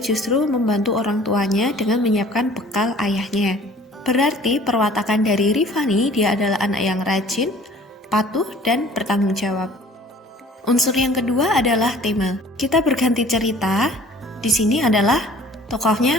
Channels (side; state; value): both; normal; correlation 0.51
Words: justru membantu orang tuanya dengan menyiapkan bekal ayahnya. Berarti perwatakan dari Rifani, dia adalah anak yang rajin, patuh, dan bertanggung jawab. Unsur yang kedua adalah tema. Kita berganti cerita. Di sini adalah tokohnya